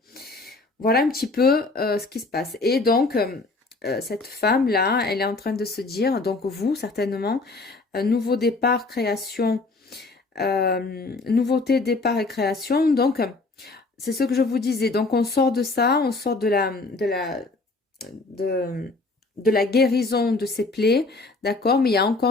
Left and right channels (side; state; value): right; quieter; 3.5 dB